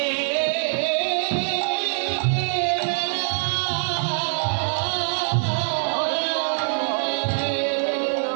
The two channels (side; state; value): left; silent; 61 dB below the other